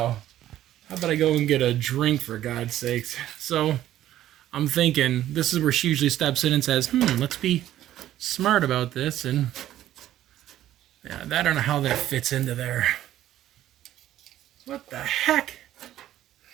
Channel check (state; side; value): quieter; left; 12.9 dB